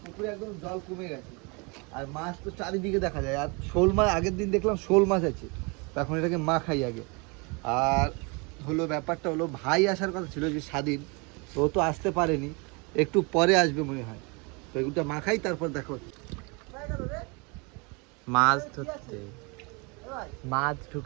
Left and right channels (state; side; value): quieter; left; 30.3 dB